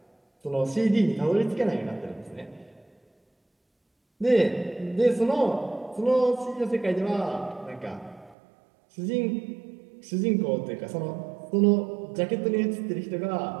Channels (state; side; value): drops out; left; at 8.3 s